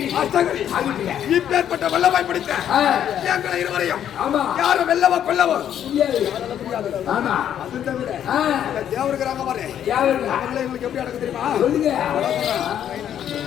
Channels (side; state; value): right; quieter; 10.0 dB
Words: இப்பேற்பட்ட வல்லமை பிடித்த எங்களை இருவரையும் யாரும் வெல்லவோ கொல்லவோ தேவருக்கிறாங்க பாரு. அவங்களை எங்களுக்கு எப்படி அடக்க தெரியுமா?